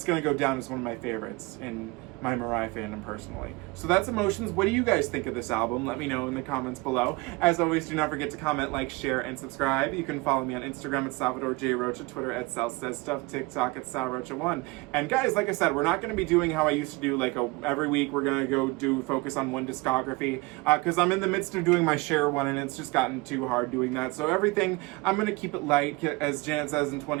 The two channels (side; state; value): left; quieter; 24.5 dB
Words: going to go down as one of my favorites in my Mariah fandom personally. So that's Emotions. What do you guys think of this album? Let me know in the comments below. As always, do not forget to comment, like, share, and subscribe. You can follow me on Instagram at Salvador J. Rocha, Twitter at Sal Says Stuff, TikTok at SalRocha1. And guys, like I said, we're not going to be doing how I used to do, like every week we're going to go focus on one discography, because I'm in the midst of doing my share one and it's just gotten too hard doing that. So everything, I'm going to keep it light, as Janet says in